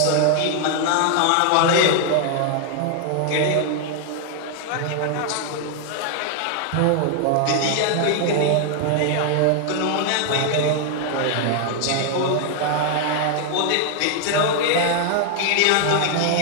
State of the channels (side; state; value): both; different; correlation 0.00